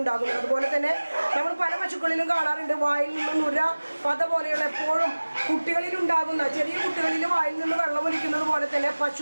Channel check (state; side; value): inverted; both; correlation -1.00